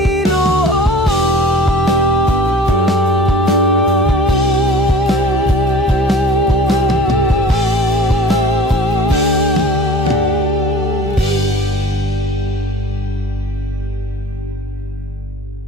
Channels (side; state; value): both; normal; correlation 0.43